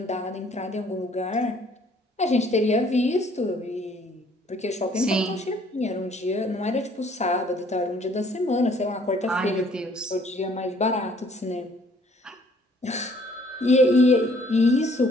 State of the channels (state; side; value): normal; both; correlation 0.60